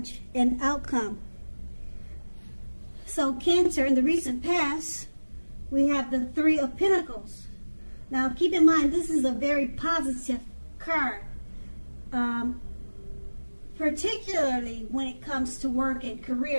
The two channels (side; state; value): both; inverted; correlation -1.00